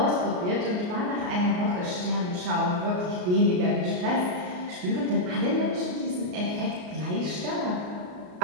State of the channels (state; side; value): late; left; 33 ms